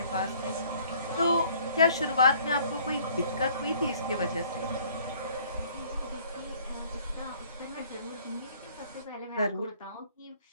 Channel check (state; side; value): inverted; both; correlation -0.57